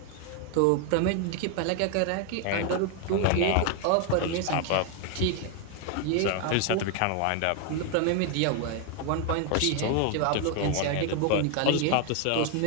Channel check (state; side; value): different; both; correlation 0.01